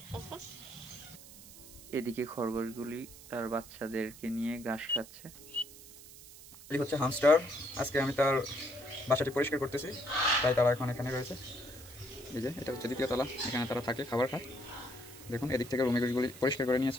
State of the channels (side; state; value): right; noise; hiss, 18 dB below the sound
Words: করতেছে। এদিকে খরগোশগুলি তার বাচ্চাদেরকে নিয়ে ঘাস খাচ্ছে। এই হচ্ছে হামস্টার। আজকে আমি তার বাসাটি পরিষ্কার করতেছি, তাই তারা এখন এখানে রয়েছে। এই যে এটা হচ্ছে দ্বিতীয় তলা, এখানে তারা থাকে, খাবার খায়। দেখুন এদিক থেকে রুমেগুলি পরিষ্কার করে